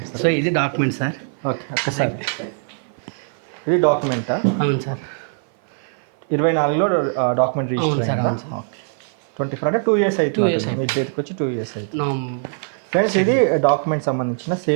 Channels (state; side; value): silent; left; 55 dB below the other